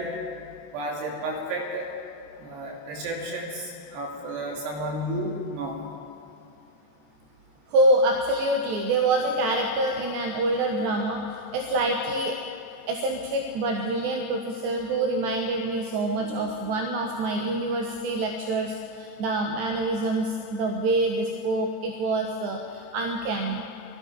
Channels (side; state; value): left; late; 14 ms